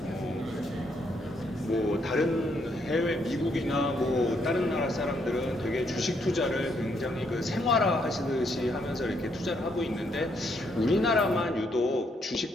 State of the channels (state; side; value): normal; both; correlation 0.74